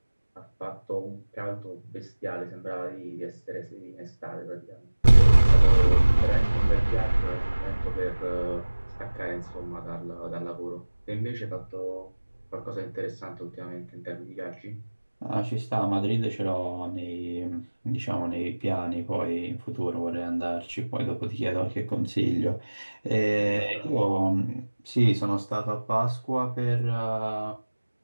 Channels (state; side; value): inverted; both; correlation -1.00